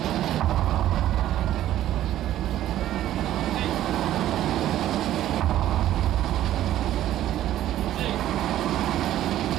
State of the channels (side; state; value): left; quieter; 12.9 dB